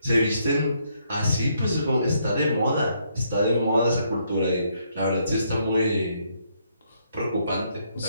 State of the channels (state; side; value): inverted; both; correlation -0.73